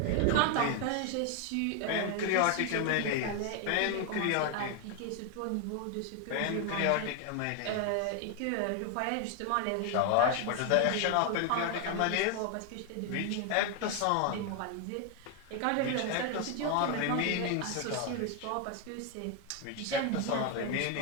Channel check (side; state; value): both; different; correlation 0.01